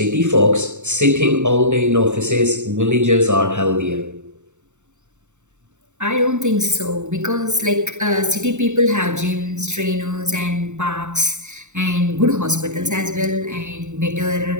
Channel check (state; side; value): late; left; 0.84 ms